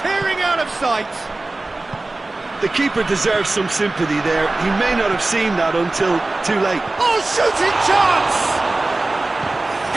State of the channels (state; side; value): quieter; left; 3.0 dB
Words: out of sight! The keeper deserves some sympathy there. He may not have seen that until too late. Oh, shooting chance!